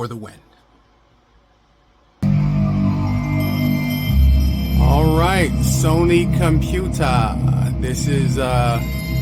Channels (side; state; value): both; identical; correlation 1.00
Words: the win. All right, Sony Computer. This is,